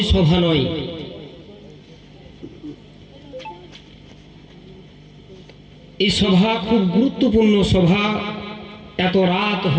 সভা নয়। এই সভা খুব গুরুত্বপূর্ণ সভা। এত রাত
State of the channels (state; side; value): identical; both; correlation 1.00